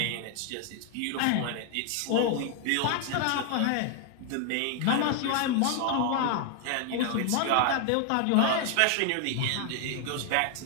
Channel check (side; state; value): both; different; correlation 0.00